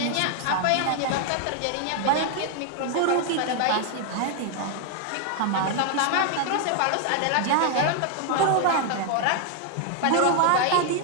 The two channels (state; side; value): different; both; correlation 0.00